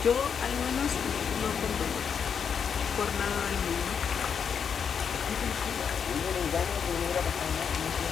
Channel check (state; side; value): quieter; right; 7.0 dB